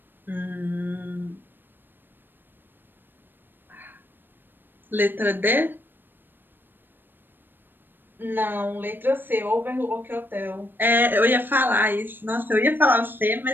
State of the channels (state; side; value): late; left; 0.095 ms